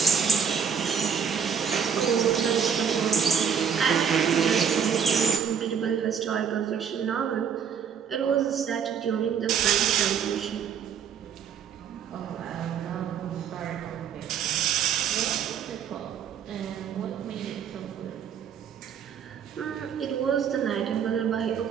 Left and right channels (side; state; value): left; quieter; 7.3 dB